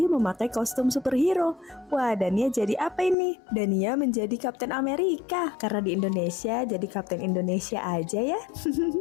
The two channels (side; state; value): right; drops out; at 3.2 s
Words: memakai kostum superhero. Wah, Dania jadi apa ini? Dania menjadi Kapten Amerika. Karena di Indonesia, jadi Kapten Indonesia aja ya.